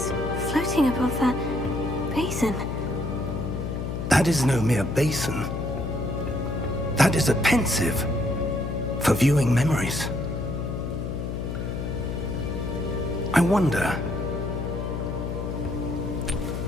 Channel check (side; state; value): left; noise; hum, 3 dB below the sound